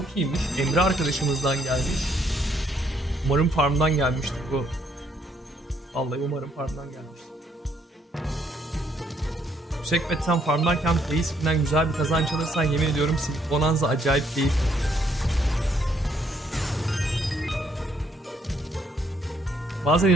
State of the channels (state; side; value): normal; both; correlation 0.70